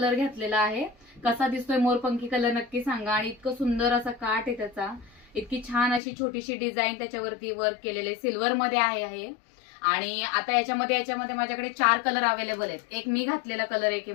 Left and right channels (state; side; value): drops out; right; at 6.0 s